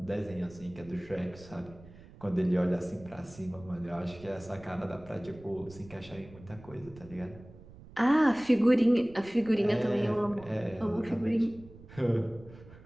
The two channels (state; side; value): noise; right; rumble, 20 dB below the sound